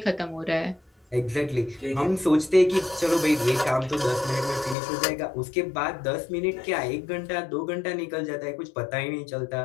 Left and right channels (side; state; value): right; drops out; at 4.8 s